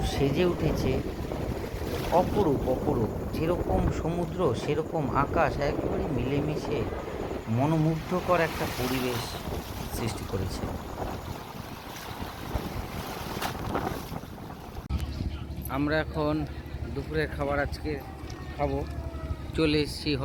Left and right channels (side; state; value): both; identical; correlation 1.00